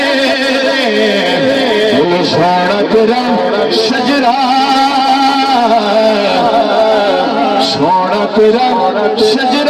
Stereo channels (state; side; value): identical; both; correlation 1.00